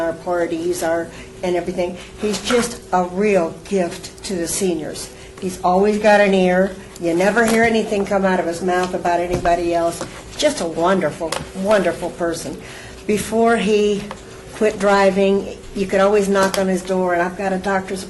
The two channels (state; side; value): identical; both; correlation 1.00